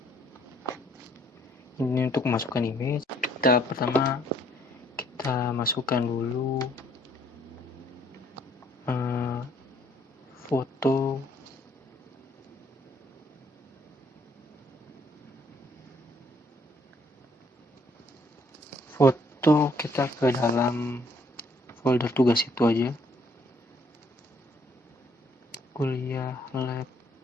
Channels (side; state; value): both; normal; correlation 0.66